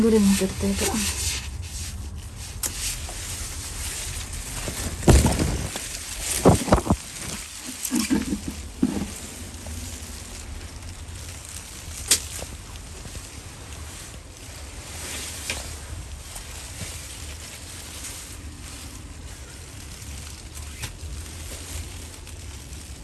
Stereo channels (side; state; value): both; identical; correlation 1.00